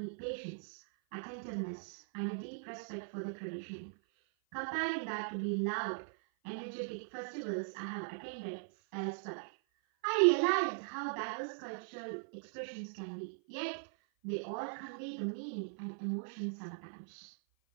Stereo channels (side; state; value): left; silent; 51 dB below the other